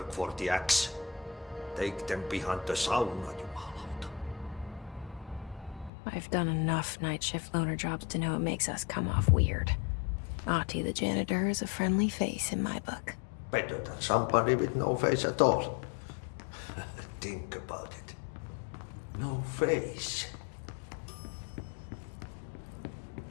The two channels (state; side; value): drops out; right; at 5.9 s